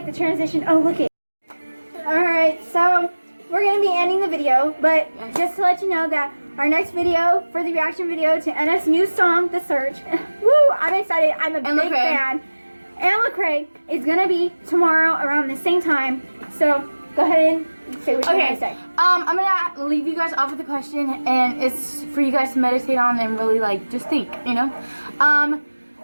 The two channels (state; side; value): inverted; both; correlation -1.00